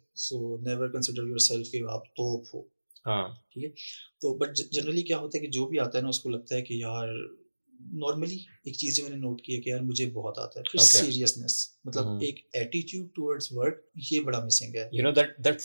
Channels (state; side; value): inverted; both; correlation -1.00